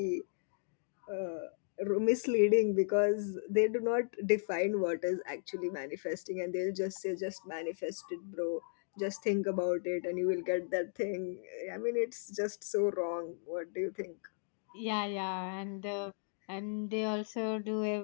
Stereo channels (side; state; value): right; silent; digital silence